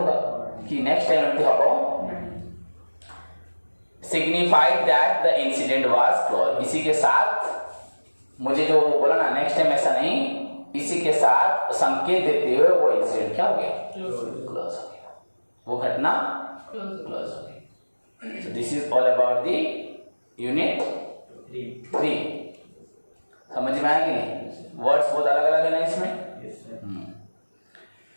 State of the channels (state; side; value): inverted; both; correlation -1.00